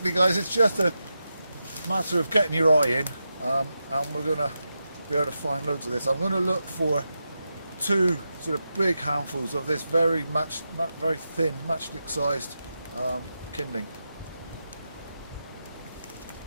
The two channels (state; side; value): inverted; both; correlation -0.89